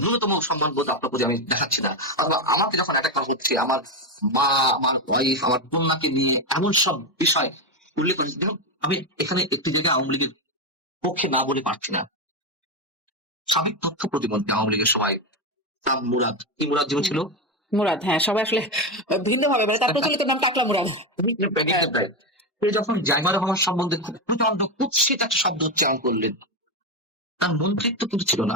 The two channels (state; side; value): normal; both; correlation 0.11